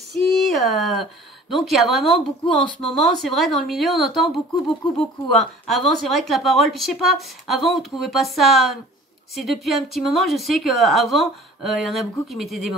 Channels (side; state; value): both; normal; correlation 0.47